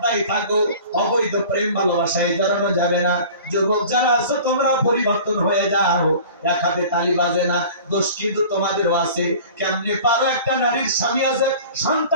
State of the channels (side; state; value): both; inverted; correlation -0.43